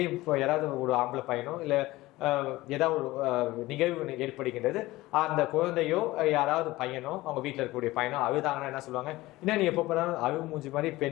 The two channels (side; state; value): right; quieter; 18.6 dB